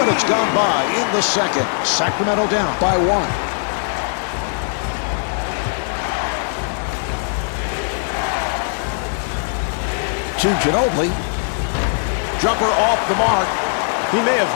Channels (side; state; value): right; silent; 59 dB below the other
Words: gone by in the second. Sacramento down by 1. To Ginobili. Jumper off the mark. He may